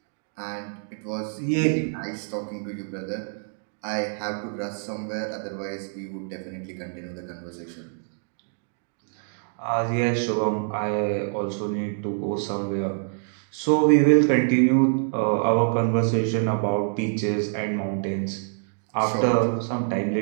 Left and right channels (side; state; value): left; silent; 56 dB below the other